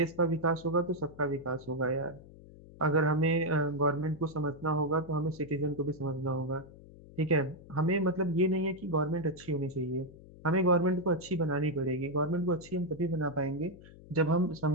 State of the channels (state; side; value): noise; left; hum, 20 dB below the sound